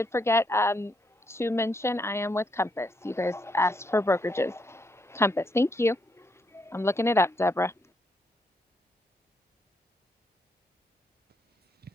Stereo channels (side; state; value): both; normal; correlation 0.76